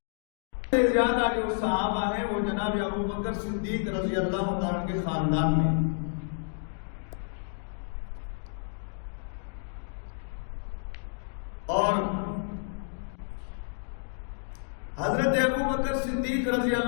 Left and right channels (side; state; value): right; silent; digital silence